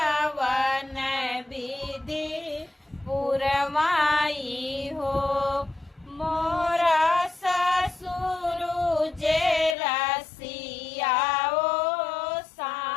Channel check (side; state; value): right; drops out; at 9.8 s